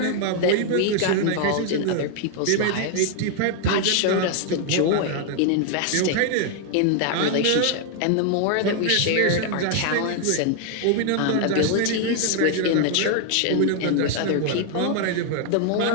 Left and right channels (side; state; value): both; different; correlation 0.00